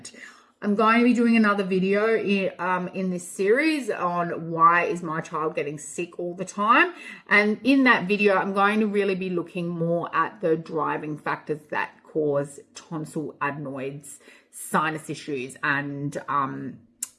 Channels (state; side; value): identical; both; correlation 1.00